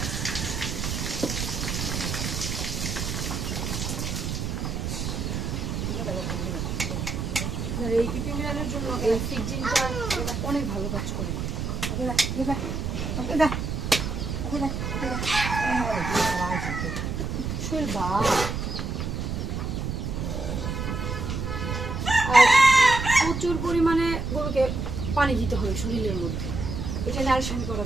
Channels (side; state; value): right; noise; rumble, 3 dB below the sound